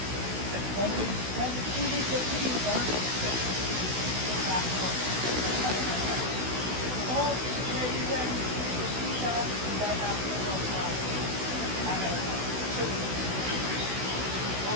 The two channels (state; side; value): late; left; 16 ms